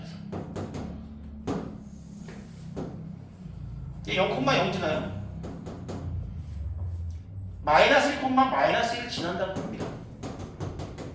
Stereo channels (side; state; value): both; identical; correlation 1.00